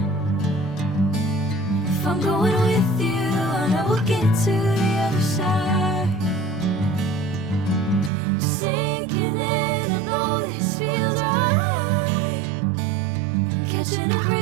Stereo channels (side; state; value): left; drops out; at 8.1 s